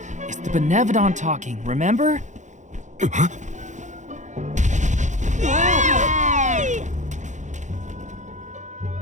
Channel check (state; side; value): late; left; 0.35 ms